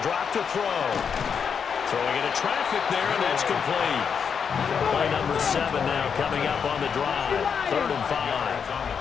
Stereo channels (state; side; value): quieter; right; 6.7 dB